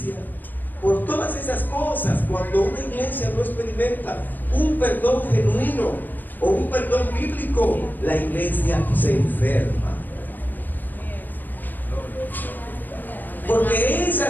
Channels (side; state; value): right; late; 0.087 ms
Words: por todas esas cosas. Cuando una iglesia no experimenta un perdón genuino o un perdón bíblico, la iglesia se enferma. Porque